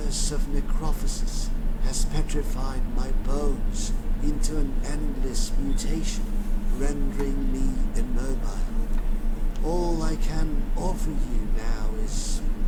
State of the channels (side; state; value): both; identical; correlation 1.00